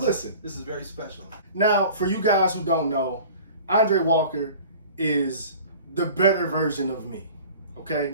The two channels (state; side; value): inverted; both; correlation -0.43